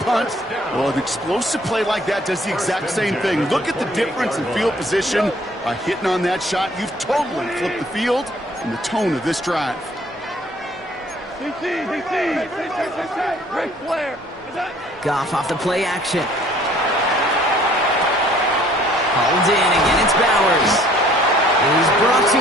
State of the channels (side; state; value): both; normal; correlation 0.57